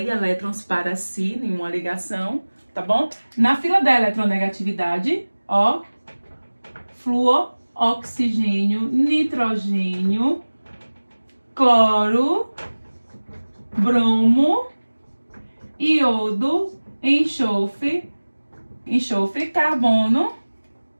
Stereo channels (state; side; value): inverted; both; correlation -1.00